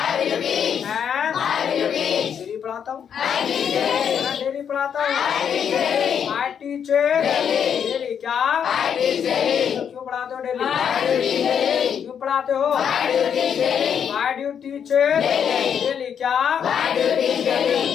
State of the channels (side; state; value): right; quieter; 8.0 dB